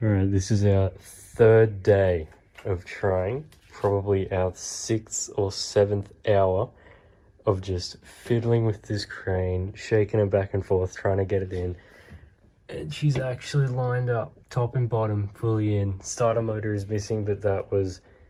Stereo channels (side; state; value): both; identical; correlation 1.00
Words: Alright, this is our third day of trying, probably our 6th or 7th hour of just fiddling with this crane, shaking it back and forth, trying to get it in. And she's actually lined up, top and bottom, fully in. Starter motor is missing, but that was,